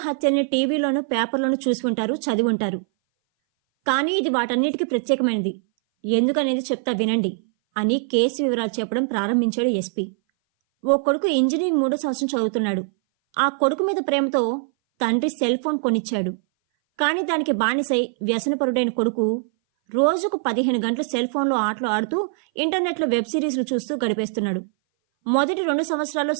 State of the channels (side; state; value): left; silent; 59 dB below the other